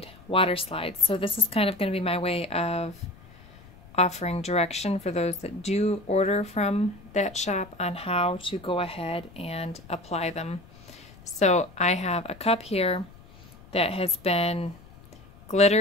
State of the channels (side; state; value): left; noise; rumble, 22 dB below the sound